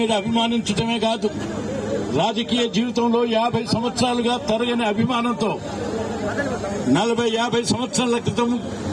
అభిమానించడమే కాదు, రాజకీయ జీవితంలో 50 సంవత్సరాలుగా తరగని అభిమానంతో 40-50 సంవత్సరాల క్రితం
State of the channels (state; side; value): identical; both; correlation 1.00